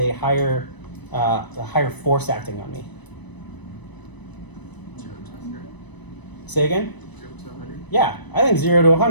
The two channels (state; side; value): late; right; 1.0 ms